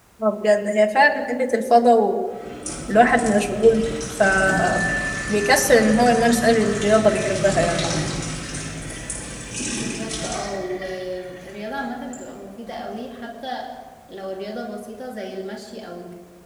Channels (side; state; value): both; identical; correlation 1.00